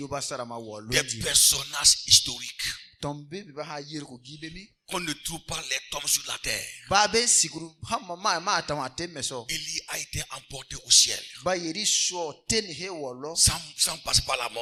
personnages historiques. qu'on ne trouve pas les tombes sur la terre. Élie a été emporté au ciel sans passer par la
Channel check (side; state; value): both; identical; correlation 1.00